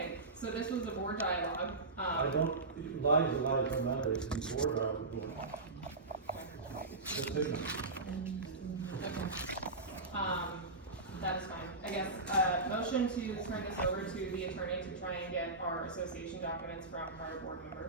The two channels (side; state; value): left; quieter; 3.3 dB